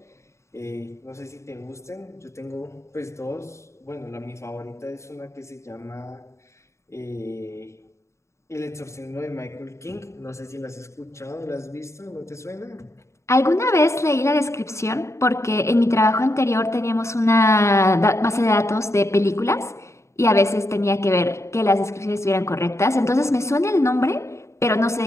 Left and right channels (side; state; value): right; late; 0.14 ms